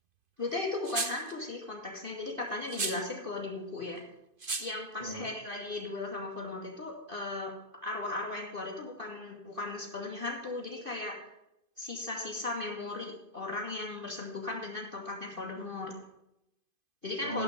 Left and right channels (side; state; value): left; late; 2.5 ms